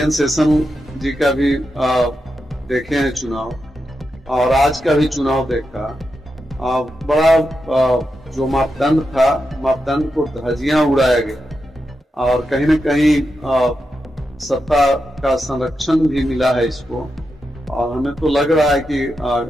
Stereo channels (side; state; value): both; normal; correlation 0.87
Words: शेषन जी का भी देखे हैं चुनाव, और आज का भी चुनाव देखा। बड़ा जो मापदंड था, मापदंड को धज्जियां उड़ाया गया और कहीं न कहीं सत्ता का संरक्षण भी मिला है इसको। और हमें तो लग रहा है कि